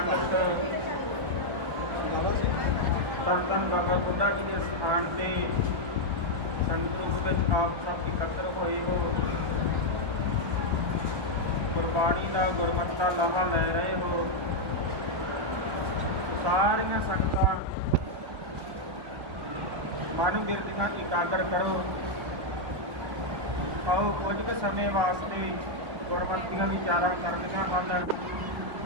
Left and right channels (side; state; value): left; late; 1.1 ms